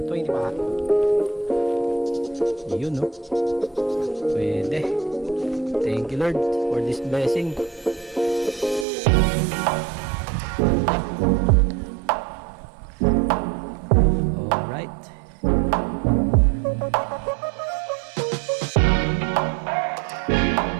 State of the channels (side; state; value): left; drops out; at 8.8 s